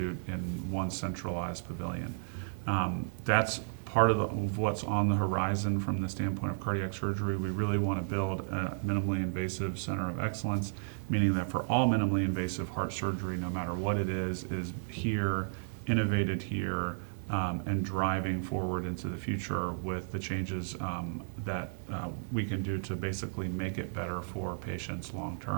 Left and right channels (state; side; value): silent; left; 56 dB below the other